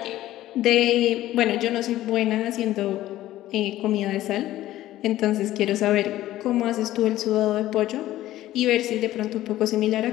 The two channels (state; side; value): quieter; right; 14.6 dB